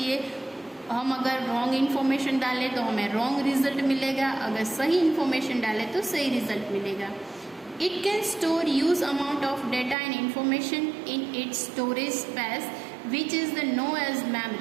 हम अगर रॉन्ग इन्फॉर्मेशन डालें तो हमें रॉन्ग रिजल्ट मिलेगा, अगर सही इन्फॉर्मेशन डालें तो सही रिजल्ट मिलेगा। It can store huge amount of data and information in its storage space, which is known as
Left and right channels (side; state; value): left; drops out; at 10.0 s